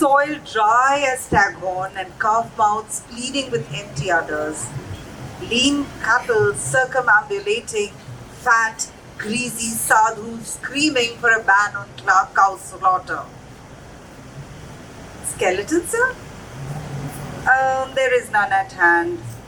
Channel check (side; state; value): both; identical; correlation 1.00